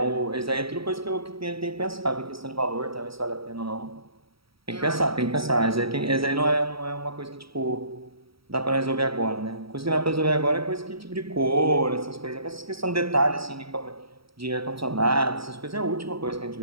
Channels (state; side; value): late; left; 0.75 ms